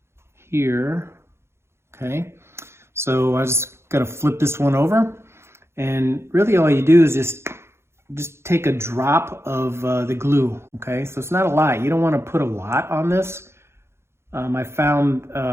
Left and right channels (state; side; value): late; left; 0.12 ms